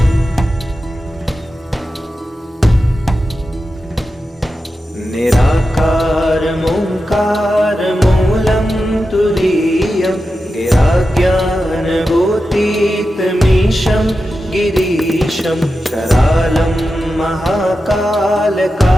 निराकारमोङ्कारमूलं तुरीयं गिराज्ञानभूतीतमीशं गिरीशं करालं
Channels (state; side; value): normal; both; correlation 0.91